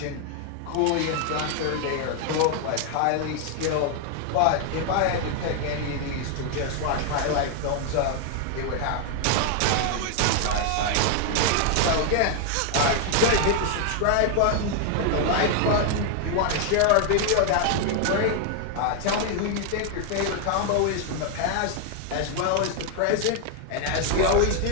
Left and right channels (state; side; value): different; both; correlation 0.00